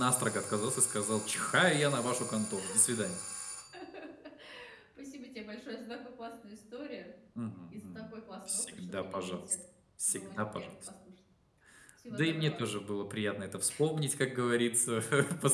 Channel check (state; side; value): identical; both; correlation 1.00